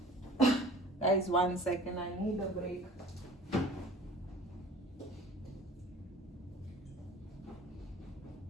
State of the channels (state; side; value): normal; both; correlation 0.45